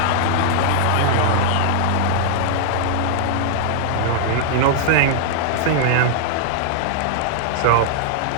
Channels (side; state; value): both; different; correlation -0.01